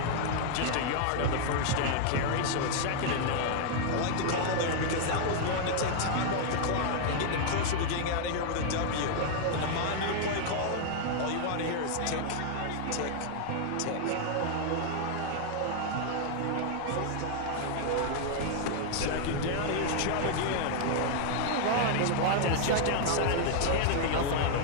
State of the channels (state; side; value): different; both; correlation 0.00